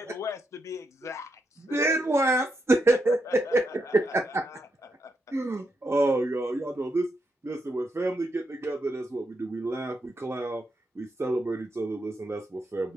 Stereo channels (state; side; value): normal; both; correlation 0.82